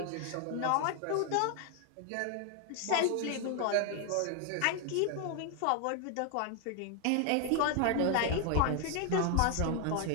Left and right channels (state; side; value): different; both; correlation 0.01